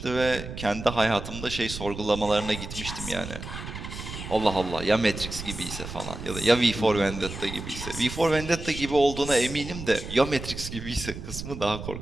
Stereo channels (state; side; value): noise; right; rumble, 9 dB below the sound